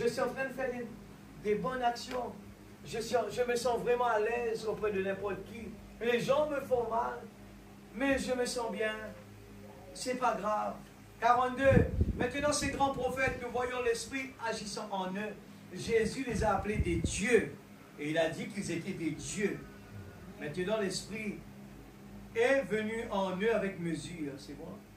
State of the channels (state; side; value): identical; both; correlation 1.00